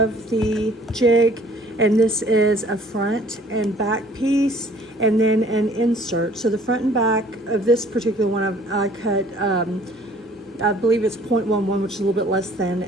the jig, and this is a front and back piece and then an insert. So the front and back of this particular one I cut I believe it's 0.11, which is a little bit less than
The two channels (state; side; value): normal; both; correlation 0.55